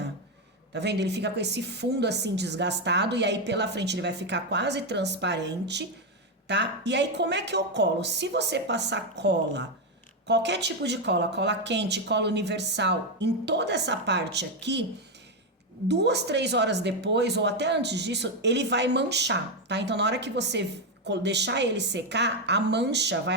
Tá vendo? Ele fica com esse fundo assim desgastado e aí pela frente ele vai ficar quase transparente, tá? E aí como é que eu colo? Se você passar cola, qualquer tipo de cola, cola quente, cola universal, em toda essa parte aqui, 2, 3 horas depois ou até antes disso, ele vai manchar, tá? Então na hora que você deixar ele secar, a mancha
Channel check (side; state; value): both; normal; correlation 0.06